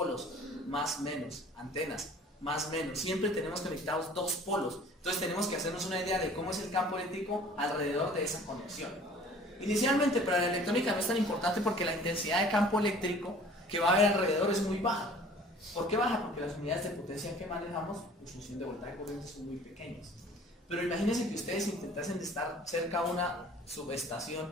más menos, antenas, más menos. Siempre tenemos conectados dos polos. Entonces tenemos que hacernos una idea de cómo es el campo eléctrico alrededor de esa conexión. Inicialmente, para la electrónica no es tan importante porque la intensidad de campo eléctrico que va a haber alrededor es muy baja. ¿Por qué baja? Porque las unidades de potencia que manejamos en función de voltaje y corriente son muy pequeñas. Pero imagínense que ustedes intentasen estar cerca a una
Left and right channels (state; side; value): normal; both; correlation 0.49